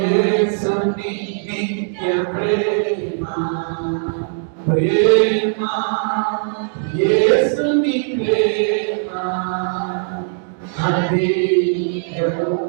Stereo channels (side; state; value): left; silent; digital silence